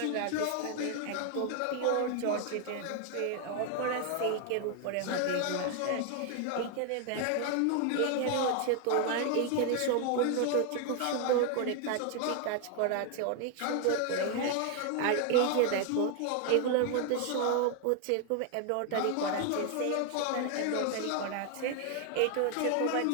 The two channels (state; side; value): different; both; correlation 0.00